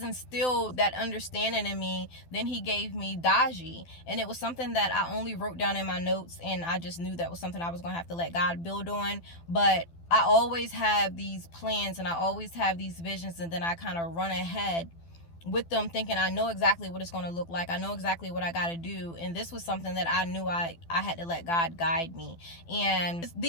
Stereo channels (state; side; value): late; right; 12 ms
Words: instilled that understanding in me. Then he gave me DaGi, and it was something that I only wrote down in my notes, and I just knew that was something I was going to have to let God build on. But I always have these plans, and I always have these visions, and then I kind of run ahead with them thinking I know exactly what it's going to look like. I know exactly what I got to do. And this was something that I knew I had to let God guide me. And